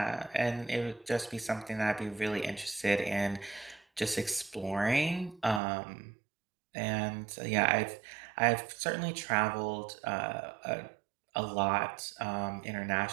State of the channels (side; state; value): left; drops out; at 5.6 s